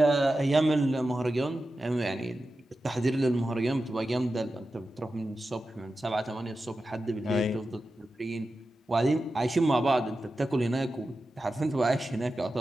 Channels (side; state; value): both; normal; correlation 0.92